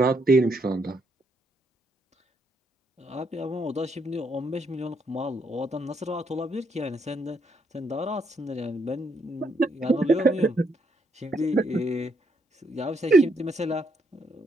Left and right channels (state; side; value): normal; both; correlation 0.75